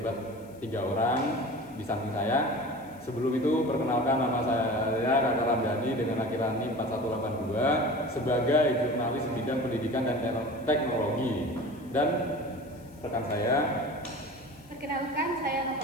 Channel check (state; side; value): noise; left; hiss, 28 dB below the sound